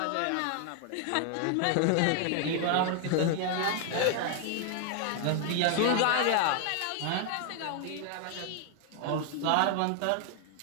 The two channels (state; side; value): different; both; correlation 0.00